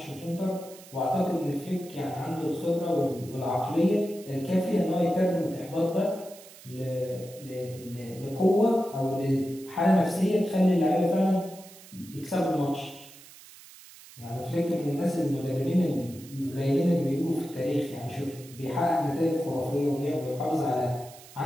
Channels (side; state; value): right; noise; hiss, 20 dB below the sound